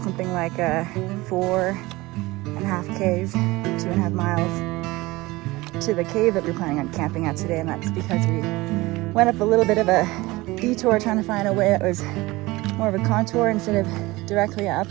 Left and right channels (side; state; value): left; quieter; 20.8 dB